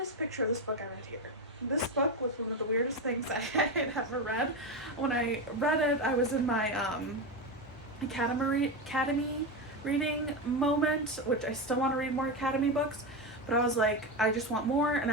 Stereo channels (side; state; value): both; normal; correlation 0.14